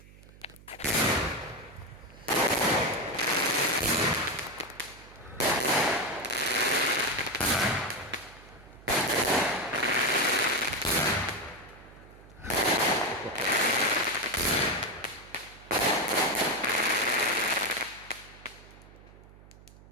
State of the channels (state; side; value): noise; right; hum, 22 dB below the sound